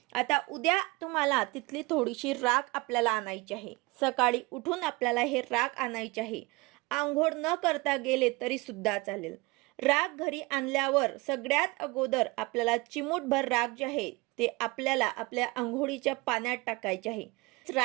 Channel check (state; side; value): quieter; left; 24.3 dB